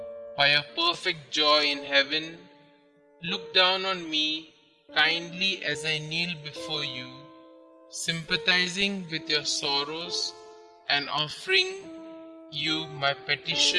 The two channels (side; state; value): both; identical; correlation 1.00